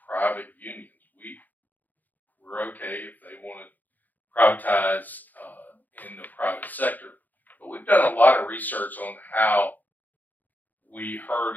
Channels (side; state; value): right; late; 0.084 ms